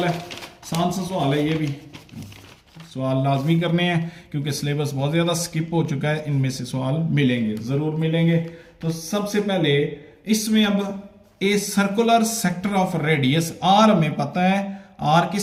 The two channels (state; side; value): identical; both; correlation 1.00